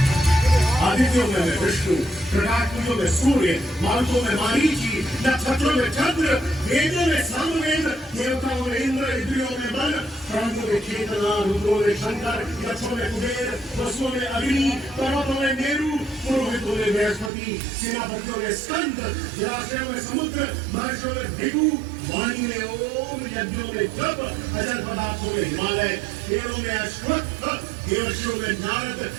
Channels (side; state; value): left; drops out; at 17.3 s